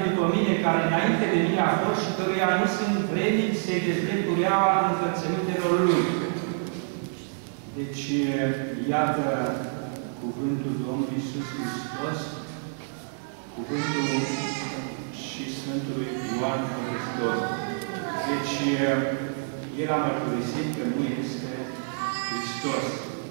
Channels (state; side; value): silent; left; 60 dB below the other